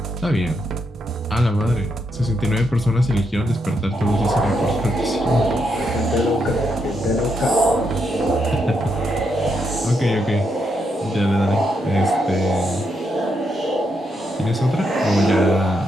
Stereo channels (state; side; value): normal; both; correlation 0.80